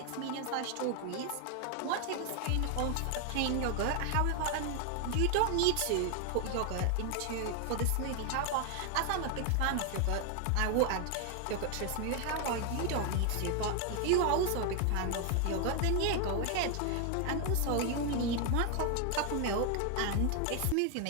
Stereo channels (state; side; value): different; both; correlation 0.01